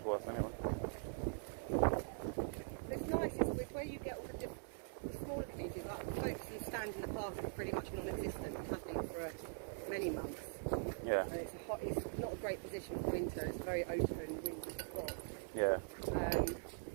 anyway. It's nice, it's where you get all the smaller communities, like the folks who stand in the park are pretty much non-existent, nothing for many months. Yeah. And it's not a great position for winter, it's a very open, windy spot. Yeah.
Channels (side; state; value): left; silent; digital silence